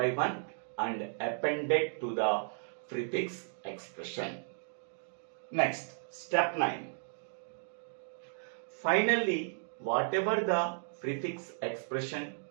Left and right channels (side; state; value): left; silent; digital silence